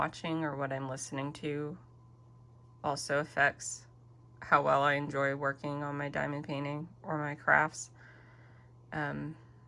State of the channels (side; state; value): both; identical; correlation 1.00